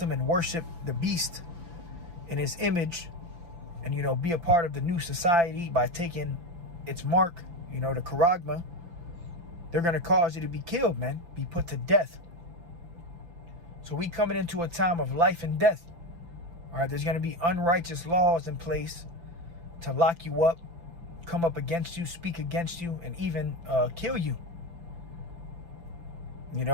and worship the beast in his image, and, you know, be a part of the new society by taking its mark, you know, the charagma, they're going to cause you to be killed, man, be put to death. So we coming into a time of life and death. All right, there's going to be unrighteous laws in place to lock you up, come up against you, speak against you, and even kill you. You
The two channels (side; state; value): left; late; 5.9 ms